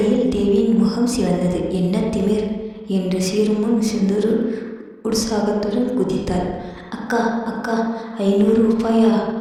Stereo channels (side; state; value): both; identical; correlation 1.00